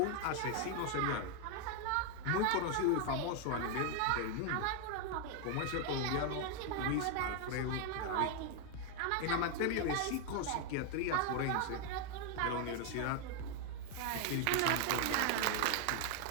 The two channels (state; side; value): different; both; correlation 0.01